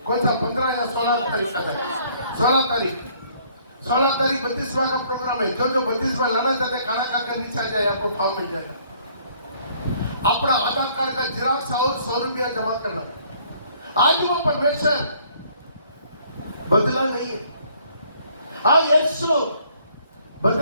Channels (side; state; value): both; inverted; correlation -0.61